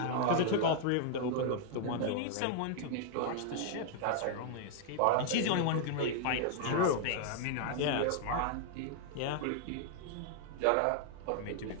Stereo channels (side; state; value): both; different; correlation 0.00